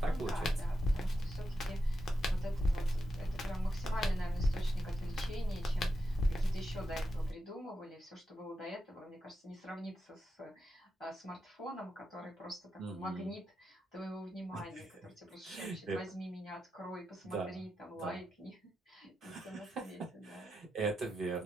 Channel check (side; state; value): both; normal; correlation 0.87